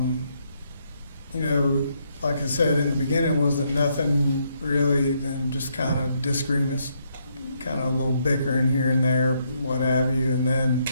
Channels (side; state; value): both; inverted; correlation -0.75